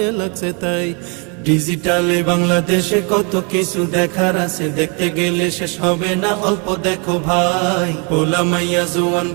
লাগছে তাই। ডিজিটালে বাংলাদেশে কত কিছু দেখার আছে, দেখতে গেলে শেষ হবে না। অল্প দেখো ভাই, পোলা মাইয়া জওয়ান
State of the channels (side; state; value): left; quieter; 34.1 dB